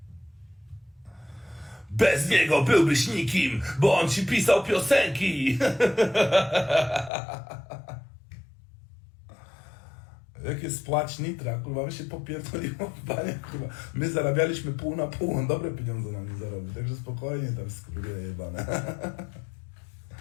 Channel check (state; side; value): drops out; right; at 7.1 s